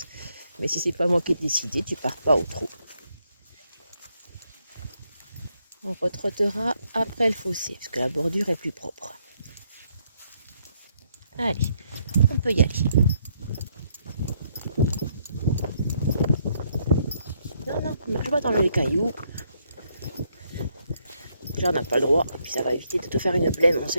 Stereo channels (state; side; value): inverted; both; correlation -0.73